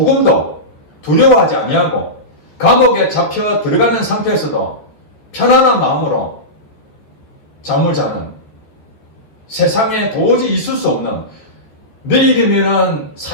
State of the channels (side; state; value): right; late; 14 ms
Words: 두려워하지 아니하고 감옥에 잡혀 들어가는 상태에서도 편안한 마음으로 잠을 자는, 세상에 도저히 있을 수 없는, 내일이면